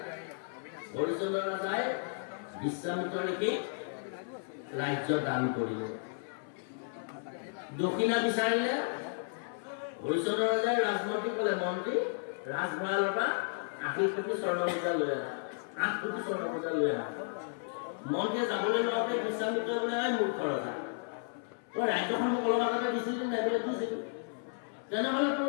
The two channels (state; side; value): silent; right; 56 dB below the other